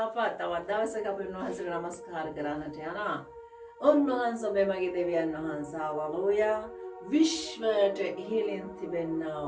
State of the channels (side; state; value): both; identical; correlation 1.00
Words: තවත් දවසක අපි උන්වහන්සේට නමස්කාර කරන්නට යනවා. උන්වහන්සේ ඔබේ මගේ දෙවියන් වහන්සේ හලෙලූයා විශ්වයට ඉහළින් තිබෙනා